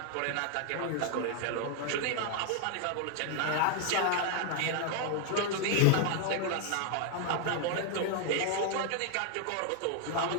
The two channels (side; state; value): both; different; correlation 0.00